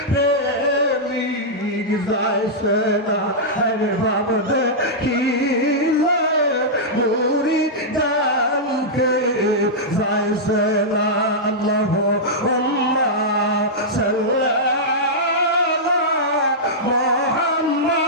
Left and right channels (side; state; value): both; normal; correlation -0.10